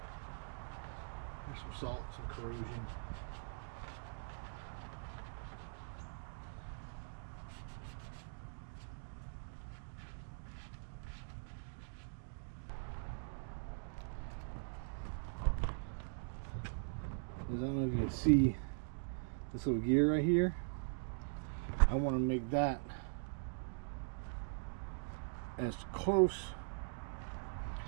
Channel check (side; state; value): left; silent; digital silence